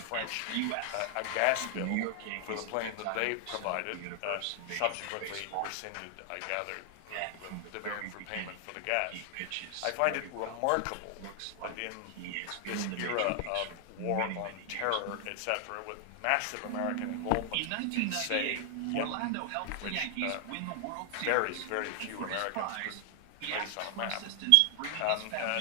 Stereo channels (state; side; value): different; both; correlation 0.00